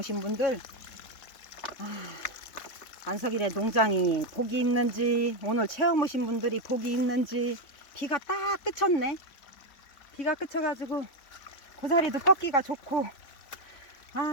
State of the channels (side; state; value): right; late; 3.5 ms